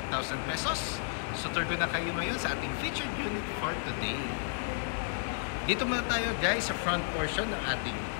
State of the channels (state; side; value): silent; right; 56 dB below the other